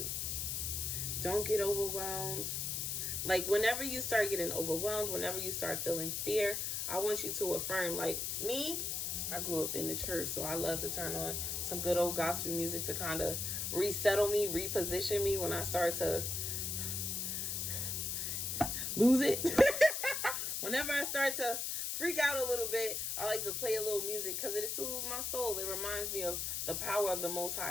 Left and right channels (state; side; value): noise; left; hiss, 1 dB below the sound